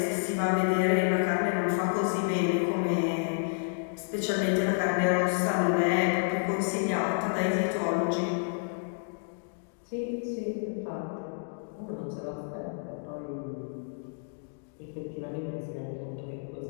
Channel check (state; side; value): silent; right; digital silence